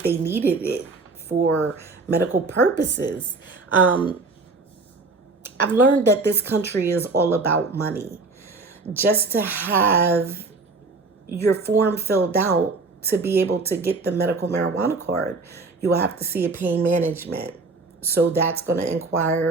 they needed it for medical purposes. I've learned that this country is all about money. Just to have your form filled out to be able to get the medical marijuana card, you will have to see a pain management. So that's going to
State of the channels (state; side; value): quieter; left; 3.8 dB